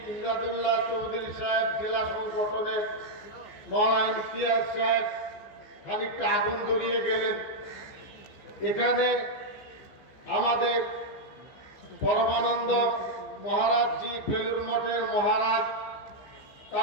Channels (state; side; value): late; right; 14 ms